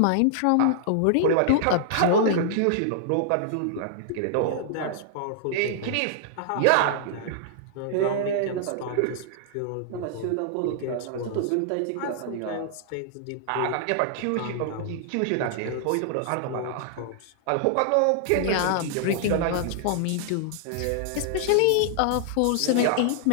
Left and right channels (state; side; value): different; both; correlation -0.01